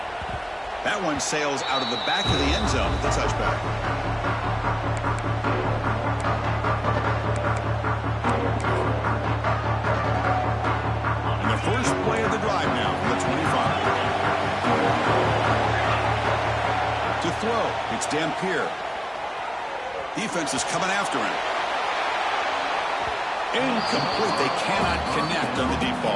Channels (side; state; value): both; identical; correlation 1.00